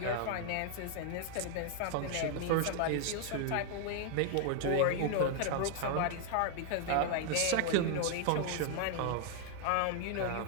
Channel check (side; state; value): both; different; correlation 0.00